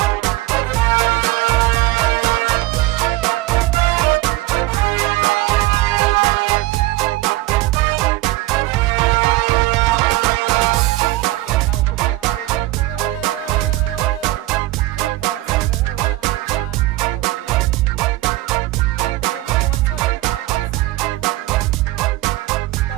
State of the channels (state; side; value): quieter; left; 18.1 dB